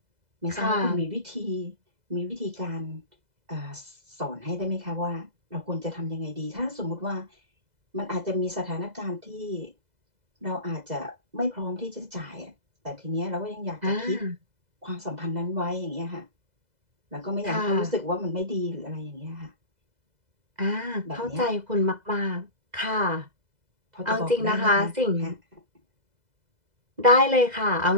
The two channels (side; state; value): left; late; 2.0 ms